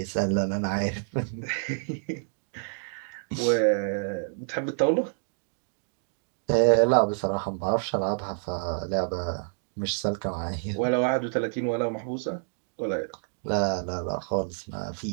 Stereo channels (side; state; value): left; silent; digital silence